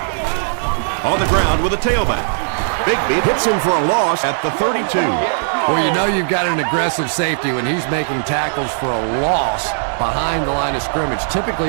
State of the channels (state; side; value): silent; left; digital silence